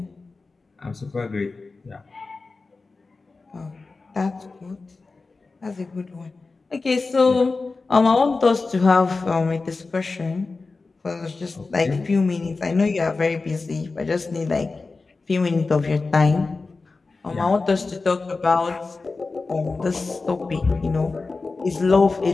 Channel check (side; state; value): right; quieter; 3.9 dB